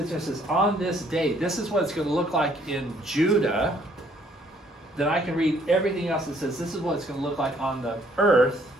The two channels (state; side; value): normal; both; correlation 0.64